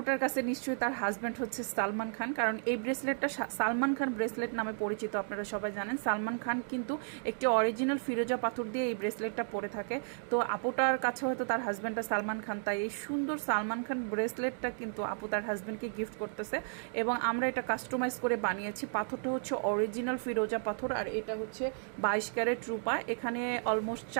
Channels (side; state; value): left; silent; digital silence